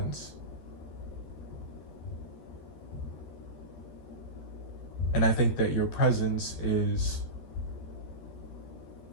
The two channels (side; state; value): right; late; 13 ms